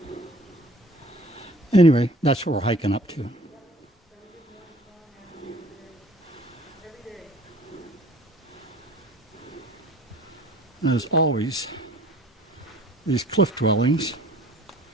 Anyway, that's what we're hiking up to. And as always, these cliff dwellings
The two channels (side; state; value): both; normal; correlation 0.50